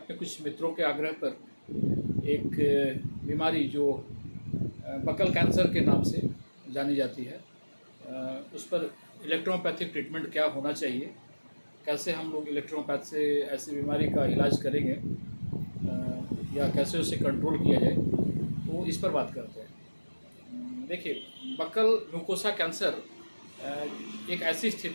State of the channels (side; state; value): both; inverted; correlation -1.00